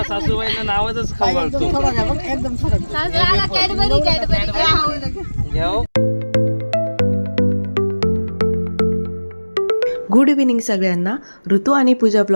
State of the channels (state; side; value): inverted; both; correlation -1.00